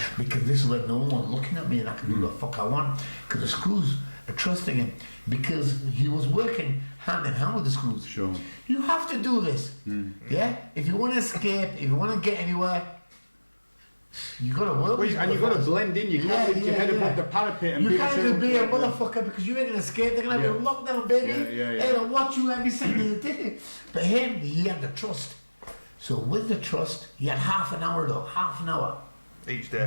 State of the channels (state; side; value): inverted; both; correlation -1.00